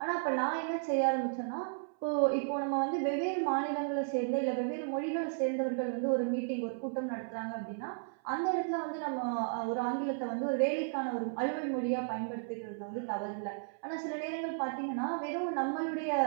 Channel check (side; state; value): left; silent; 55 dB below the other